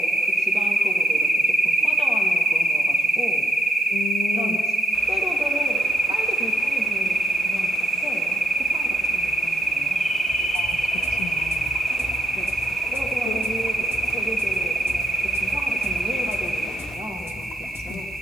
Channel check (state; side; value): normal; both; correlation 0.79